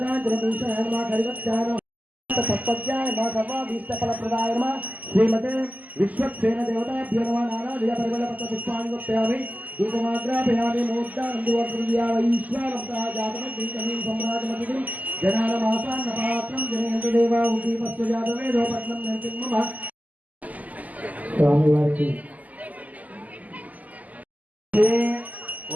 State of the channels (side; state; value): left; late; 0.078 ms